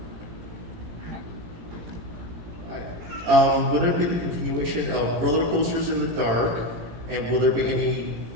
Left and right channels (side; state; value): left; late; 18 ms